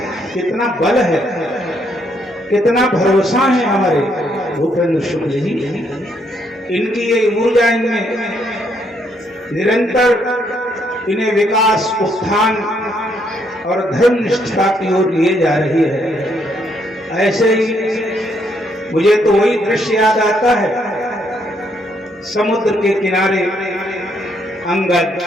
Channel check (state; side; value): normal; both; correlation 0.72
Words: कितना बल है, कितना भरोसा है हमारे भूपेंद्र शुक्ल जी। इनकी ये ऊर्जा इनमें निरंतर इन्हें विकास, उत्थान और धर्म निष्ठा की ओर लिए जा रही है। ऐसे ही मुझे तो वही दृश्य याद आता है, समुद्र के किनारे अंगद,